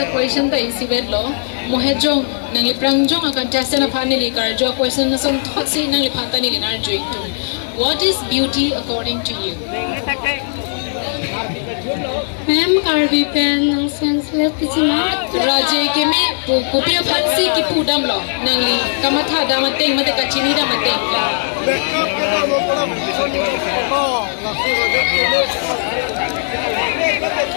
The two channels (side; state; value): right; silent; digital silence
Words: question ta isi bed lo. Mohejong nang li prangjong ang contestant na panili kar jo question na son thought si nang li panta ni linar joik to. What is beauty according to you? Ma'am, karbi pen ng senseless pichina. Raje ke me kupiya phansi ki pudam lo nang li kamatha damateng mate kachini damateng.